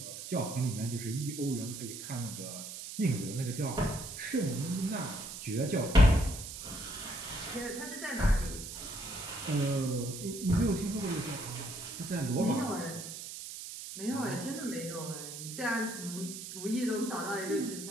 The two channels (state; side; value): noise; right; hiss, 9 dB below the sound